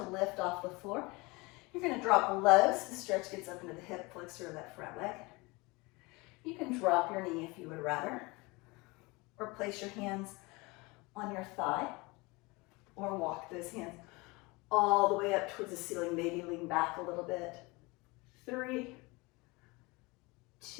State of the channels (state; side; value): quieter; right; 24.9 dB